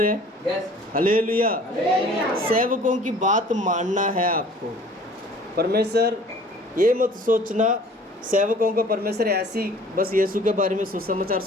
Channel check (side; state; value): both; normal; correlation 0.50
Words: हैं? यस। हालेलुया। सेवकों की बात मानना है आपको। परमेश्वर ये मत सोचना सेवकों को परमेश्वर ऐसी बस यीशु के बारे में सुसमाचार